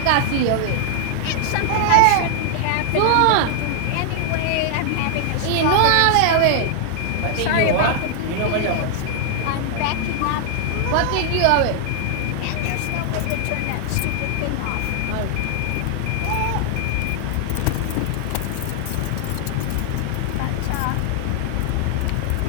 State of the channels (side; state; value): both; different; correlation 0.00